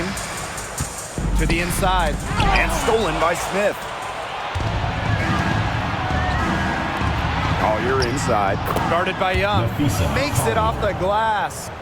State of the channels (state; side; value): identical; both; correlation 1.00